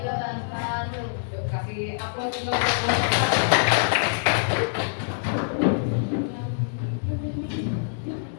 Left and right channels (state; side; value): silent; right; digital silence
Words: wabarakatuh. Yuk, kasih upload untuk